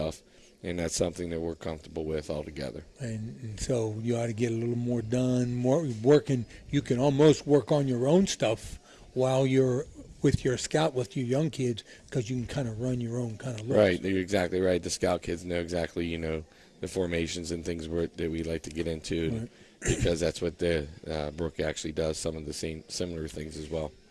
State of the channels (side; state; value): both; identical; correlation 1.00